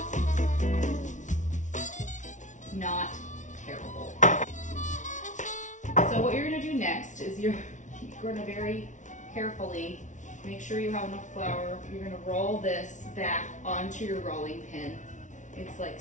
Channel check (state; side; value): late; right; 0.36 ms